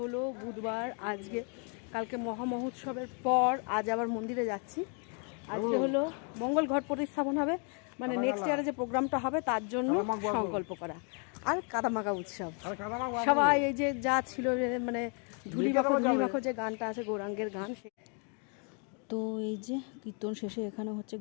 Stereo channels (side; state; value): right; quieter; 39.2 dB